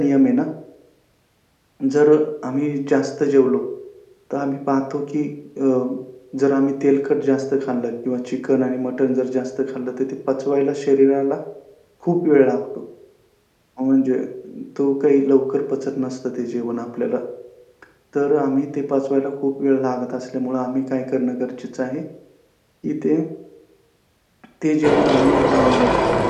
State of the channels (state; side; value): identical; both; correlation 1.00